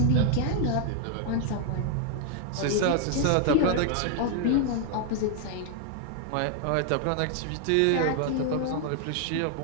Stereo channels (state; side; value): different; both; correlation 0.00